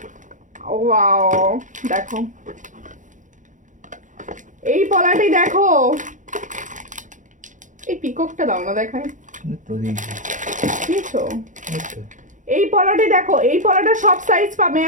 ওয়াও, দেখো এই পলাটি দেখো, এই পিককটা দাও না দেখায়, তো দেখি বুঝছো? এই পলাটি দেখো, এই পলাটা সব সাইজ পাবে।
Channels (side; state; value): left; late; 0.37 ms